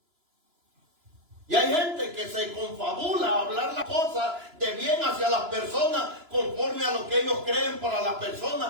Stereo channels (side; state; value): left; late; 2.9 ms